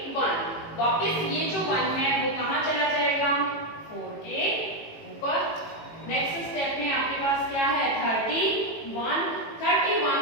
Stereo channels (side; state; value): right; late; 18 ms